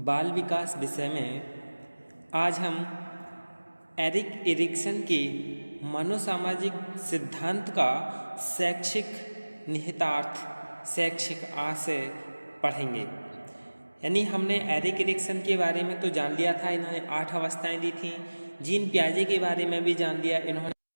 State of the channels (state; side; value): inverted; both; correlation -1.00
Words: विकास विषय में आज हम एरिक एरिक्सन के मनोसामाजिक सिद्धांत का शैक्षिक निहितार्थ, शैक्षिक आशय पढ़ेंगे। यानी हमने एरिक एरिक्सन के बारे में तो जान लिया था, इन्होंने 8 अवस्थाएं दी थी। जीन पियाजे के बारे में भी जान लिया,